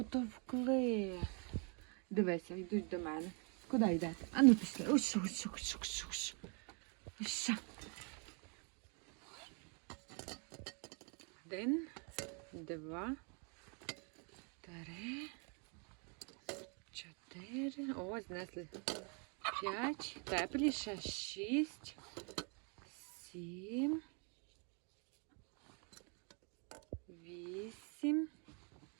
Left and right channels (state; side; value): quieter; left; 36.2 dB